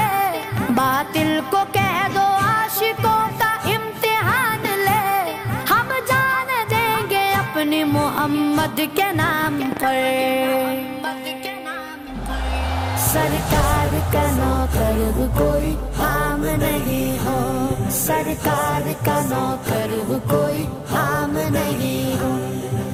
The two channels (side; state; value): both; identical; correlation 1.00